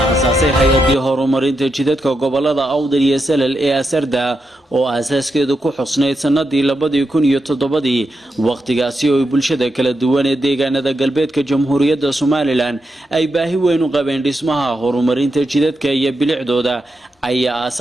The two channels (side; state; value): both; normal; correlation 0.85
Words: aasaasay hay'adii horumarinta jidadka gobolada Awdal iyo Salal ee Asarda oo asaaskeedu ku xusnayd sanadii 2007 waqtigaasi oo bulshada kala duwan ee deegaanada galbeedka Jamhuuriyadda Soomaaliland ay baahi weyn u qabeen dhismaha horumarinta jidadka iyo bilicdooda ayaa